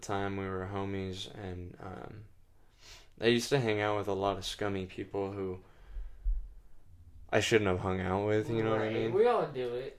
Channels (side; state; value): both; identical; correlation 1.00